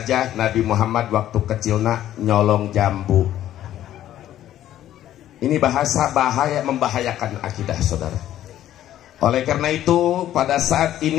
Nabi Muhammad waktu kecilnya nyolong jambu. Ini bahasa bahaya, membahayakan akidah saudara. Oleh karena itu pada saat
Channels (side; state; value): right; quieter; 12.4 dB